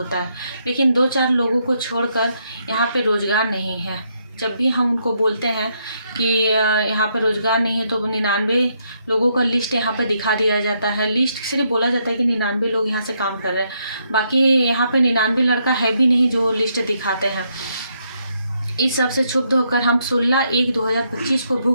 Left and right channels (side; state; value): both; inverted; correlation -0.76